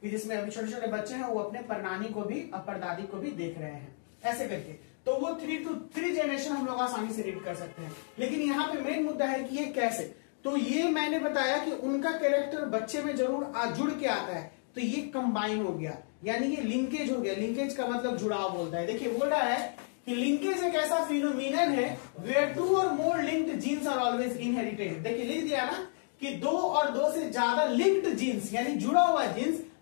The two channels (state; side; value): silent; right; 57 dB below the other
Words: कि जिसमें अभी छोटे छोटे बच्चे हैं वो अपने परनानी को भी और परदादी को भी देख रहे हैं, ऐसे करके। तो वो 3 to 3 जनरेशन हम लोग आसानी से रीड कर सकते हैं। लेकिन यहाँ पे मेन मुद्दा है कि ये कैसे। तो ये मैंने बताया कि उनका कैरेक्टर बच्चे में जरूर जुड़ के आता है, तो ये कंबाइन हो गया, यानी ये लिंकेज हो गया। लिंकेज का मतलब जुड़ाव बोलता है। देखिए बोल रहा है कि लिंकेज एक ऐसा फिनोमिनन है where 2 or more linked genes are always inherited। देखिए लिख दिया ना कि 2 और 2 से ज्यादा लिंक्ड जीन्स यानी जुड़ा हुआ जीन्स